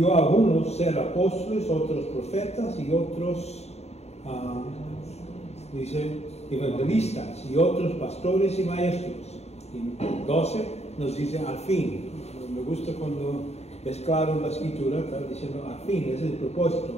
a unos ser apóstoles, otros profetas y otros, dice, evangelistas y otros pastores y maestros. Y 12 nos dice al fin. Me gusta cuando es claro en la escritura, está diciendo al fin, ese es el propósito,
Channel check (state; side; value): late; right; 0.31 ms